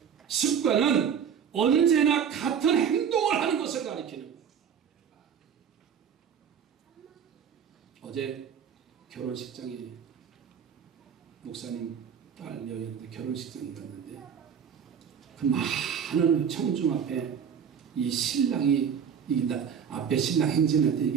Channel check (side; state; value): left; quieter; 7.6 dB